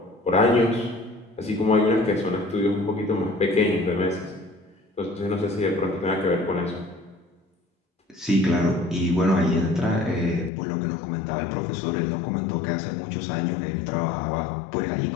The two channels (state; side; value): drops out; right; at 10.5 s